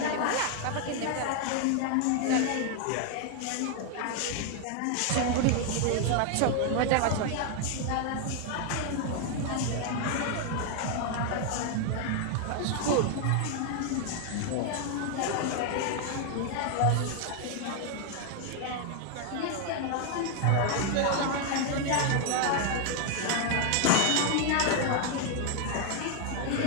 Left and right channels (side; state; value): both; different; correlation 0.01